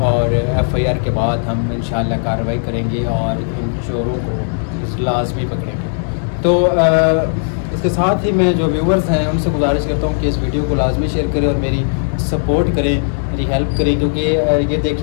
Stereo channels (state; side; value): silent; right; digital silence